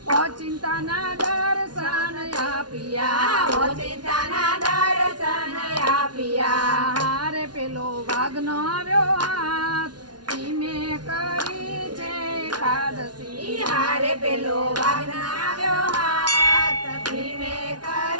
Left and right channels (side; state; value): left; late; 0.70 ms